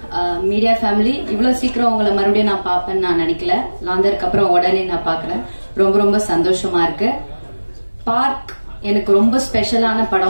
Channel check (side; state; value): both; inverted; correlation -1.00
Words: மீடியா ஃபேமிலி, இவ்வளோ சீக்கிரம் உங்களை மறுபடியும் நான் பார்ப்பேன்னு நான் நினைக்கல. லாந்தருக்கு அப்புறம் உடனே நான் பார்க்குறேன். ரொம்ப ரொம்ப சந்தோஷமா இருக்கு. பார்க் எனக்கு ரொம்ப ஸ்பெஷலான